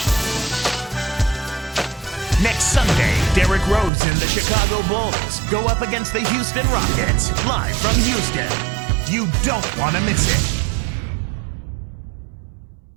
Next Sunday, Derrick Rose and the Chicago Bulls go up against the Houston Rockets, live from Houston. You don't want to miss it.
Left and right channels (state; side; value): drops out; left; at 3.9 s